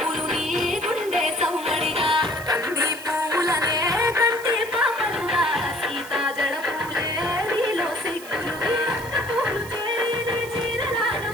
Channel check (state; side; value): noise; right; hiss, 16 dB below the sound